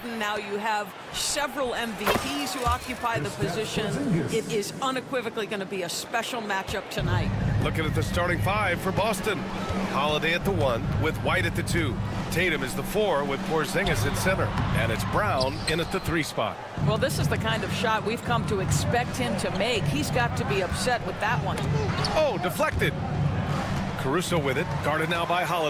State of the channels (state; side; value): identical; both; correlation 1.00